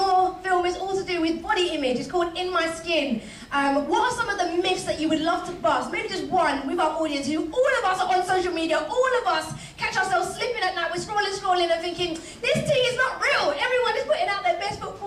film is all to do with body image, it's called In My Skin, what are some of the myths that you would love to bust? Maybe just one with our audience, who all of us are on social media, all of us catch ourselves slipping at night, we're scrolling and thinking, this tea is not real, everyone is putting out their best foot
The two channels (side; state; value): both; identical; correlation 1.00